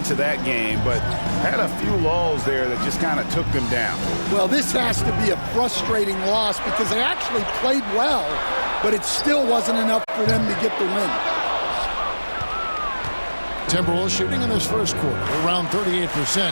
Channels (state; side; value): inverted; both; correlation -1.00